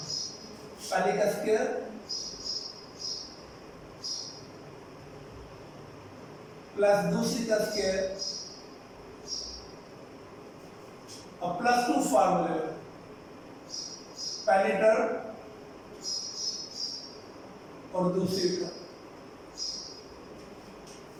पहले का स्क्वायर प्लस दूसरी का स्क्वायर, अब +2 फार्मूले, पहली टर्म और दूसरी टर्म,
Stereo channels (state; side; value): identical; both; correlation 1.00